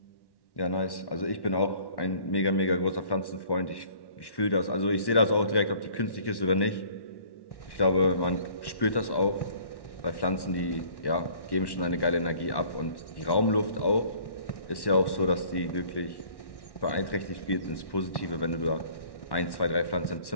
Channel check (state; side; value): late; right; 1.1 ms